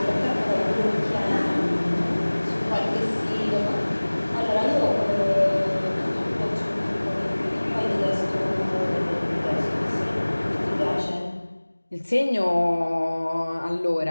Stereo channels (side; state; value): both; inverted; correlation -1.00